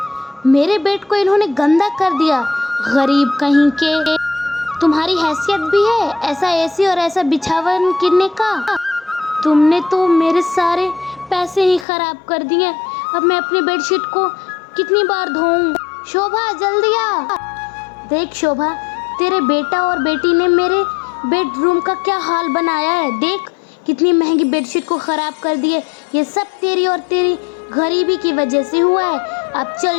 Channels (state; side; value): drops out; right; at 11.9 s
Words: मेरे बेड को इन्होंने गंदा कर दिया। गरीब कहीं के, तुम्हारी हैसियत भी है ऐसा एसी और ऐसा बिछावन किनने का? तुमने तो मेरे सारे पैसे ही खराब कर दिए। अब मैं अपनी बेडशीट को कितनी बार धोऊं? शोभा जल्दी आ। देख शोभा, तेरे बेटा और बेटी ने मेरे बेडरूम का क्या हाल बनाया है। देख कितनी महंगी बेडशीट को ख़राब कर दिए। ये सब तेरी और तेरी गरीबी की वजह से हुआ है। अब